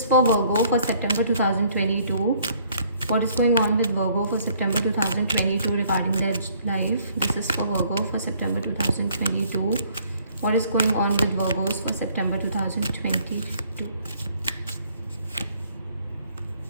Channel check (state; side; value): inverted; both; correlation -0.61